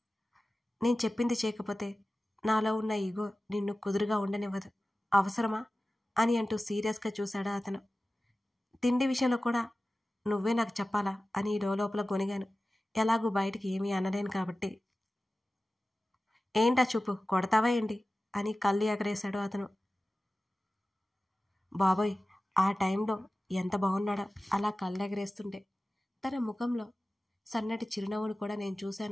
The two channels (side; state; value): both; normal; correlation 0.96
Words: నేను చెప్పింది చేయకపోతే నాలో ఉన్న ఈగో నిన్ను కుదురుగా ఉండనివ్వదు, అవసరమా అని అంటూ సీరియస్గా చూశాడా అతను. తిండి విషయంలో కూడా నువ్వే నాకు చెప్పాలా అని లోపల గొనిగాను. ఎలాగూ బయటికి ఏమీ అనలేను కాబట్టి. ఏంటా చూపు, కొడతావా ఏంటి అని కళ్ళు ఎగరేశాడు అతను. బాబోయ్, ఆ టైంలో ఎంత బాగున్నాడో అలా కళ్ళు ఎగరేస్తుంటే. తన ముఖంలో సన్నటి చిరునవ్వును కూడా నేను